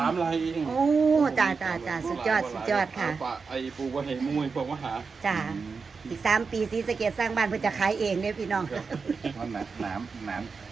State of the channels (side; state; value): left; quieter; 4.9 dB